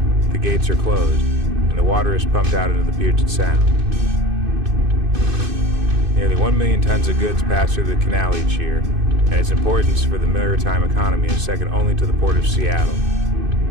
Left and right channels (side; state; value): left; late; 2.6 ms